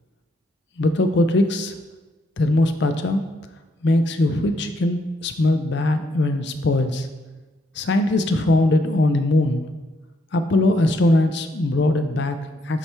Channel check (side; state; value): both; normal; correlation 0.75